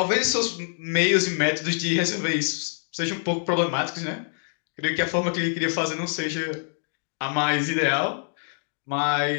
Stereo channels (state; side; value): silent; right; digital silence